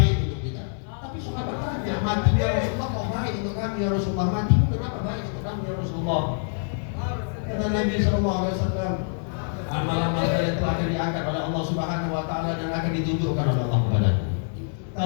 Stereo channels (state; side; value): silent; right; digital silence